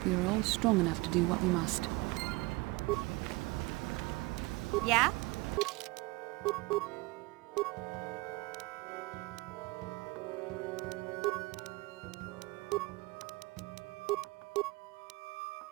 we are all strong enough to do what we must. Yeah?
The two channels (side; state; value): left; quieter; 23.3 dB